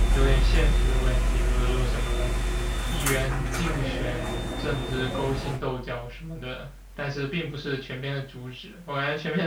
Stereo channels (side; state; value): both; identical; correlation 1.00